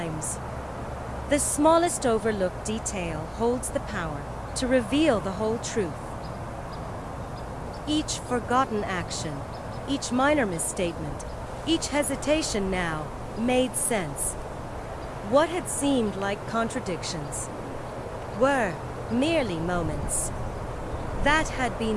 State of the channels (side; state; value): both; identical; correlation 1.00